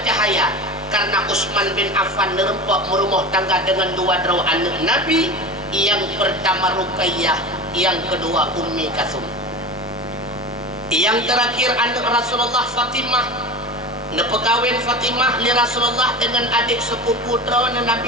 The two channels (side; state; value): both; normal; correlation 0.30